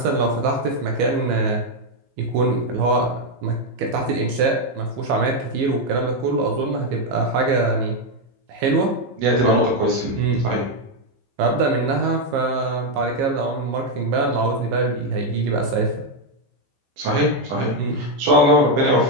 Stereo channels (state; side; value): late; left; 15 ms